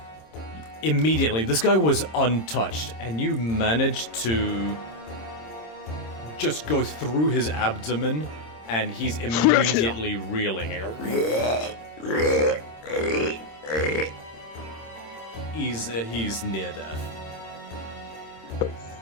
Immediately, this guy was untouched, and you managed to just go through his abdomen, and he's immediately reeling. He's near death.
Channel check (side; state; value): right; late; 26 ms